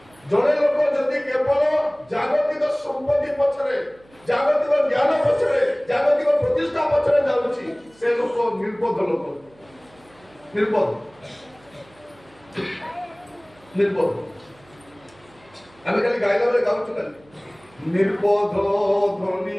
ଜଣେ ଲୋକ ଯଦି କେବଳ ଜାଗତିକ ସମ୍ପତ୍ତି ପଛରେ ଜାଗତିକ ଜ୍ଞାନ ପଛରେ ଜାଗତିକ ପ୍ରତିଷ୍ଠା ପଛରେ ଯାଉଛି ସେ ଲୋକ ନିର୍ବୋଧ ଲୋକ ନିର୍ବୋଧ ନିର୍ବୋଧ ଆମେ ଖାଲି ଗାଇଲା ବେଳେ ଗାଉଛୁ ଖାଲି ନିର୍ବୋଧ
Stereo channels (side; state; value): right; noise; hum, 28 dB below the sound